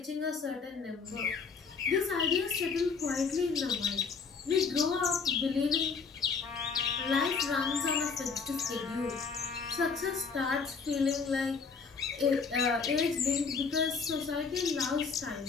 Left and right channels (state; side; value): quieter; right; 5.3 dB